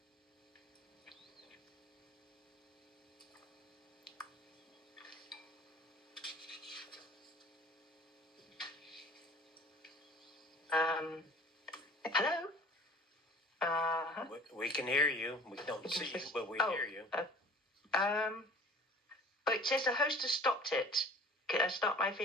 Hello? We can hear you. We don't see you, but we hear you. It says the host has stopped it. Can I start my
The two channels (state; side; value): normal; both; correlation 0.46